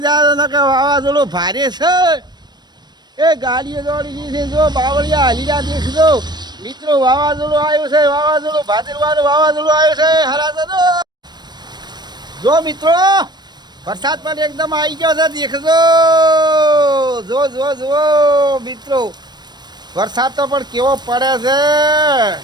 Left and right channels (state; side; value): late; left; 0.21 ms